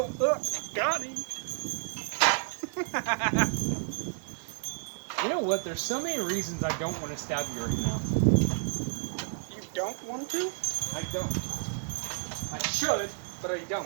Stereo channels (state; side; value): silent; left; digital silence